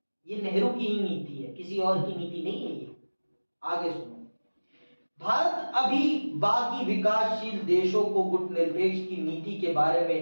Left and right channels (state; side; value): inverted; both; correlation -1.00